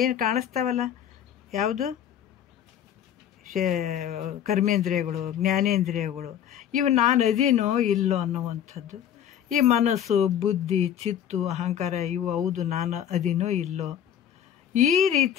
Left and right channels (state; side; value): quieter; right; 9.8 dB